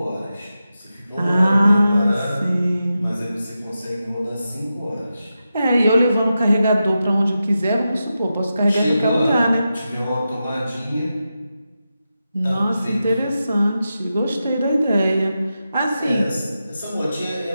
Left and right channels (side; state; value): both; inverted; correlation -0.90